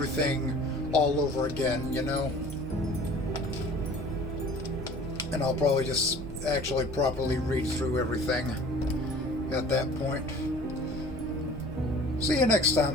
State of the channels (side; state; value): both; normal; correlation 0.47